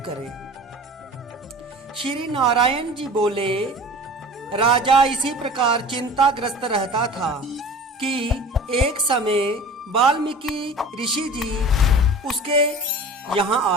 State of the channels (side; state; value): both; normal; correlation 0.40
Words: करें। श्री नारायण जी बोले, राजा इसी प्रकार चिंताग्रस्त रहता था कि एक समय वाल्मीकि ऋषि जी उसके यहाँ